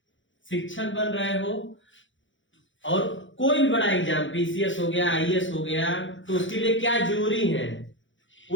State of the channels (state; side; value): late; right; 0.56 ms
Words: शिक्षक बन रहे हो, और कोई भी बड़ा एग्जाम, पीसीएस हो गया, आईएएस हो गया, तो उसके लिए क्या जरूरी है